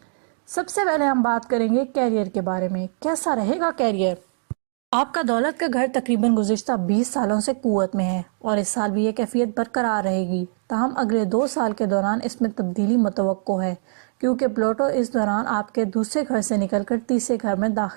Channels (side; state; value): left; silent; digital silence